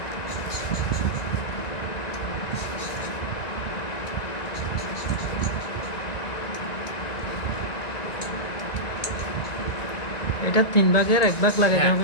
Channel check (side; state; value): right; late; 1.9 ms